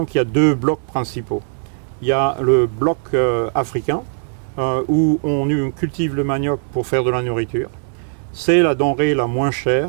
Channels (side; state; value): left; silent; digital silence